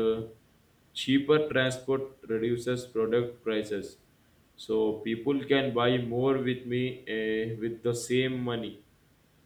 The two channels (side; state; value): both; identical; correlation 1.00